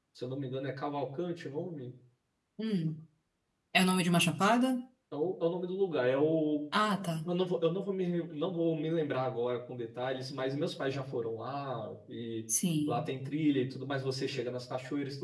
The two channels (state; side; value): identical; both; correlation 1.00